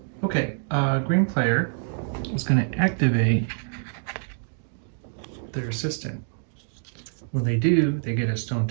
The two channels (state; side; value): silent; left; 61 dB below the other